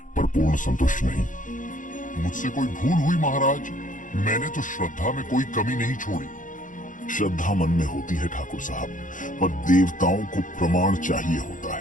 पर पूर्ण संतुष्ट नहीं। मुझसे कोई भूल हुई महाराज? मैंने तो श्रद्धा में कोई कमी नहीं छोड़ी। श्रद्धा मन में होती है ठाकुर साहब, पर देवताओं को प्रमाण चाहिए होता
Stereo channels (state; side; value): late; right; 0.38 ms